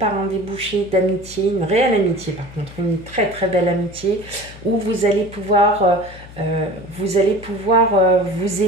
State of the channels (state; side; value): noise; left; hum, 18 dB below the sound